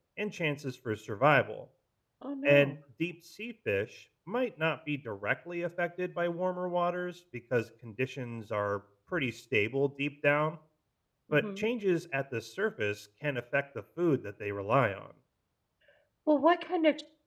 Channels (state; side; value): identical; both; correlation 1.00